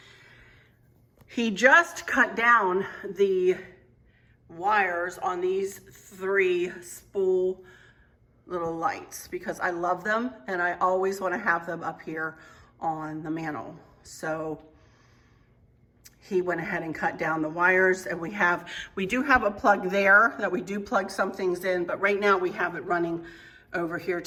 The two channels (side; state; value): both; identical; correlation 1.00